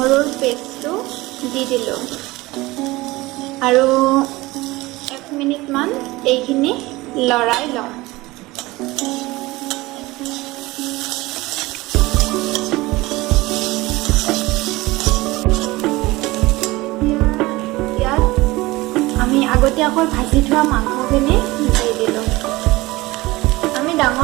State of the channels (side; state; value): left; quieter; 20.4 dB